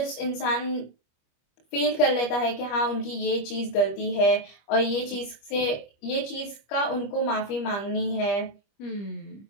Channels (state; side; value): late; right; 25 ms